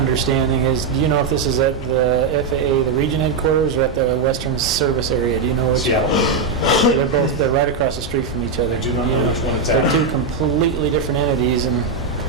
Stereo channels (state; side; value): quieter; left; 4.6 dB